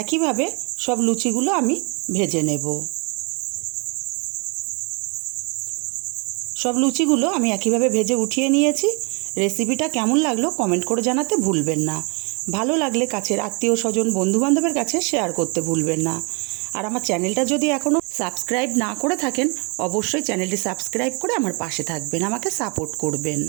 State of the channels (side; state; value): left; quieter; 32.9 dB